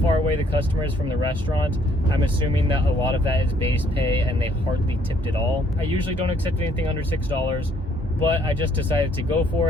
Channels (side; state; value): both; normal; correlation 0.65